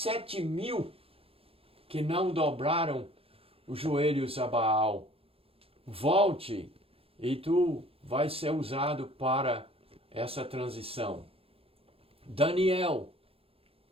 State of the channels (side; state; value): left; late; 0.27 ms